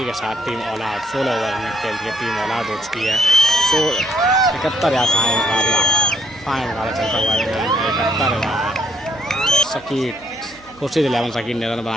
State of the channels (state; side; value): noise; right; hum, 26 dB below the sound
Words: के साथ टीम ऑल आउट। 16 ओवर में खेल के टीम ऑल आउट हो चुकी है। 71 या फाइन मुकाबला चलता हुआ 71 सकीट खुर्शीद 11 सकीट ने रन